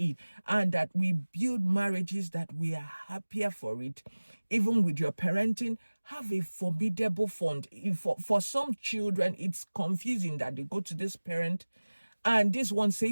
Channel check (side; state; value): both; inverted; correlation -1.00